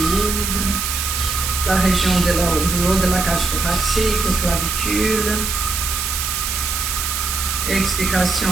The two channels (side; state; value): right; noise; hiss, 2 dB below the sound